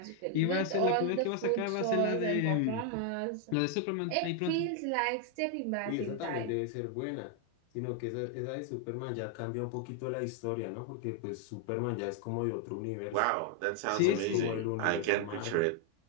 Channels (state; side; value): different; both; correlation 0.00